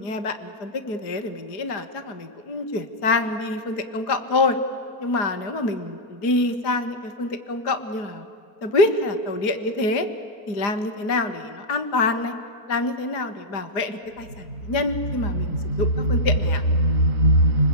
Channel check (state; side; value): late; right; 4.9 ms